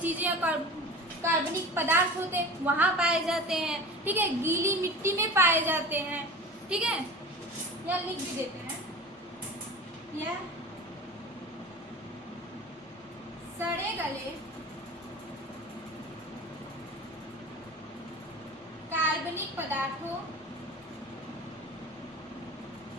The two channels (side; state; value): both; normal; correlation 0.36